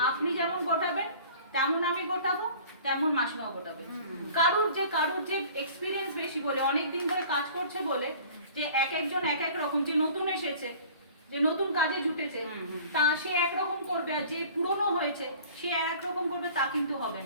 আপনি যেমন গোটাবেন তেমন আমি গোটাবো, তেমন মাসিমাও গোটাবে। কারুর যে এক্সপিরিয়েন্স বেশি বলে, অনেক দিন ধরে কাজ করছে বলে, যে এক একজন এক এক রকম, যে নতুন এসেছে, যে নতুন কাজে জুটেছে তা সে একরকম করবে, আর যে পুরনো হয়েছে সে এক রকম করবে, তা কিন্তু হবে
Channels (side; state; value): both; inverted; correlation -0.47